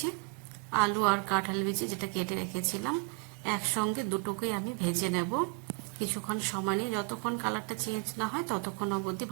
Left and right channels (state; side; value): quieter; left; 32.7 dB